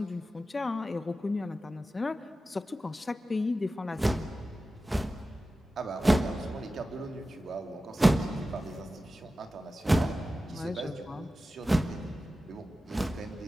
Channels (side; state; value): both; normal; correlation 0.94